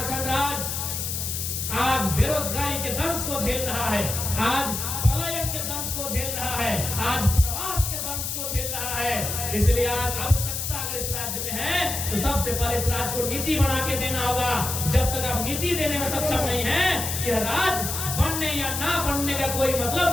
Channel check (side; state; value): left; noise; hiss, 3 dB below the sound